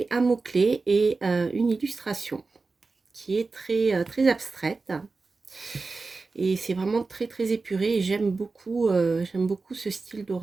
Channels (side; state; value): left; quieter; 4.0 dB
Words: un mot-clé et une illustration qui est très abstraite. Et c'est vraiment très épuré et j'aime beaucoup ce style